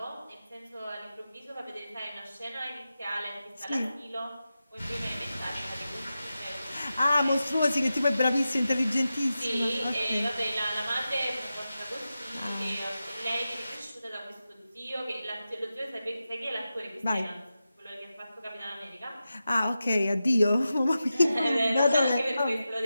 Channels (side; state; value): both; inverted; correlation -0.92